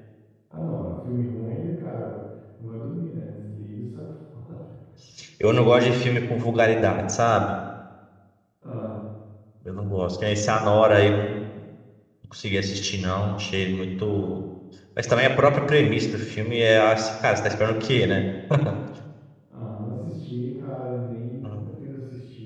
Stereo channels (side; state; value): both; identical; correlation 1.00